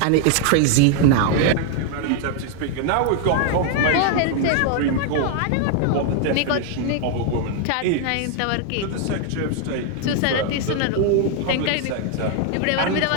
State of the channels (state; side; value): different; both; correlation 0.00